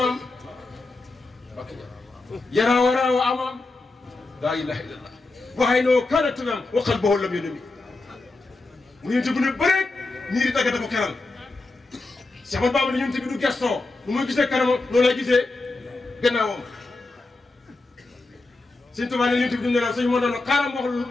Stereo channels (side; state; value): right; quieter; 3.3 dB